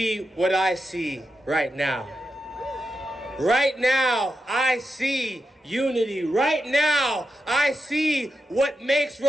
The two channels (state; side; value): normal; both; correlation 0.88